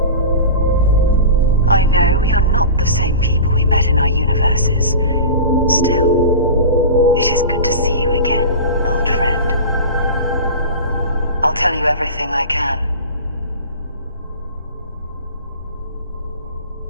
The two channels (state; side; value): inverted; both; correlation -0.33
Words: I know we are not the same people we met in our universes. Still, it is good to see you again, old friend. I'll tell you everything I can.